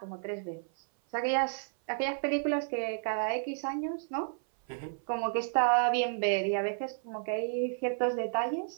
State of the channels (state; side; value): silent; left; 57 dB below the other